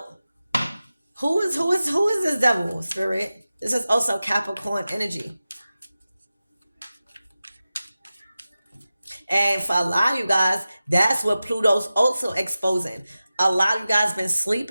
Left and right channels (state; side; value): inverted; both; correlation -0.95